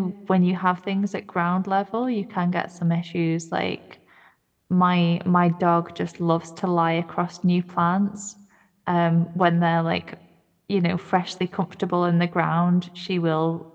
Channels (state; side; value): identical; both; correlation 1.00